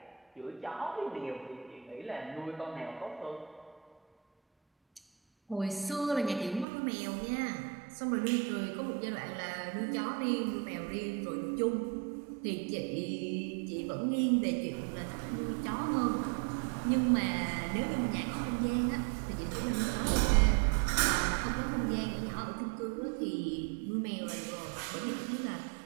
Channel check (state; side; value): drops out; left; at 6.7 s